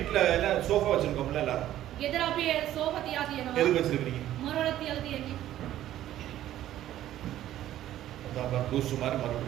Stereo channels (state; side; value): quieter; left; 12.9 dB